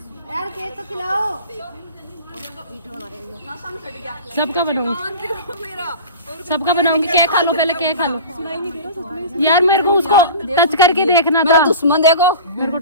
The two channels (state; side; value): inverted; both; correlation -0.35